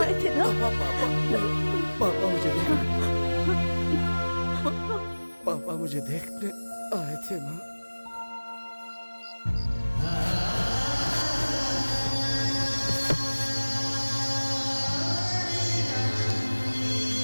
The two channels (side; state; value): both; inverted; correlation -1.00